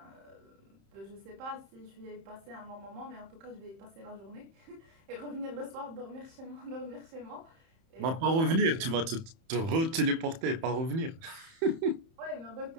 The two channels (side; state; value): left; late; 31 ms